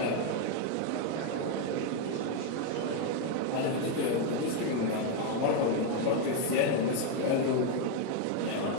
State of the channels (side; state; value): both; different; correlation 0.02